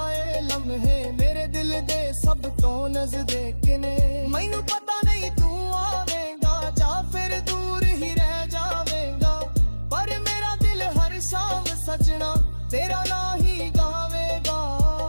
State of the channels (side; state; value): both; inverted; correlation -1.00